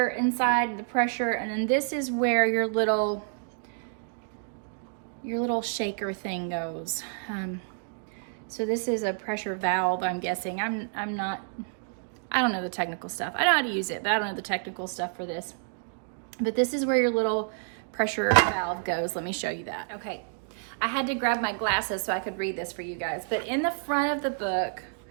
inside, the pressure, and then this is where your little shaker thing goes. So this is a pressure valve, I'm guessing. I don't know the technical stuff. I know how to use it, but I don't know the technical stuff for this. But this is where your little pressure valve goes. Let me show you that. Okay, I had to grab my glasses so I could read this for you guys. But in the front of the book,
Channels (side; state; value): left; silent; digital silence